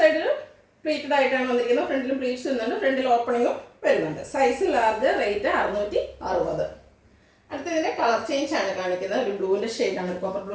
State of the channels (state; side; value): identical; both; correlation 1.00